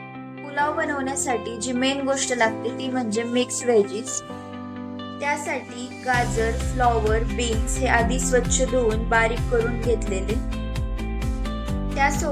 पुलाव बनवण्यासाठी जी मेन गोष्ट लागते ती म्हणजे मिक्स व्हेजीस. त्यासाठी गाजर, फ्लॉवर, बीन्स हे आधी स्वच्छ धुवून बारीक करून घेतलेले.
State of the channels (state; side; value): identical; both; correlation 1.00